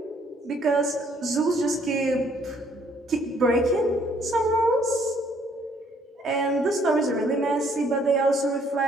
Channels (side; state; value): both; normal; correlation 0.65